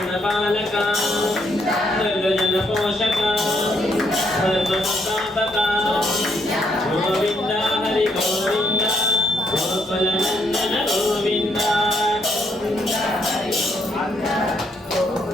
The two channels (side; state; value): both; normal; correlation 0.73